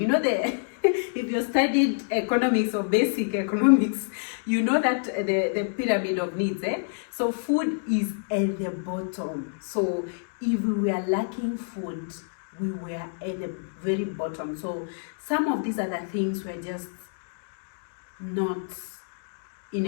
If you studied economics or basic economics, you know that the pyramid of needs, so food is at the bottom. So if we were lacking food, we were at the very bottom. So some of these other things were just not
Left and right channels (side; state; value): right; silent; digital silence